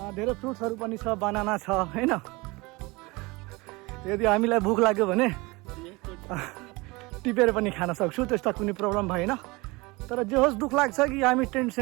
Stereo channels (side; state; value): left; quieter; 24.2 dB